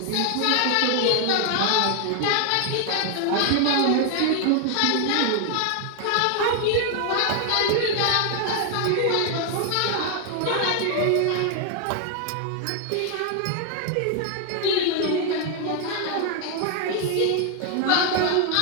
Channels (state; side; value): different; both; correlation 0.00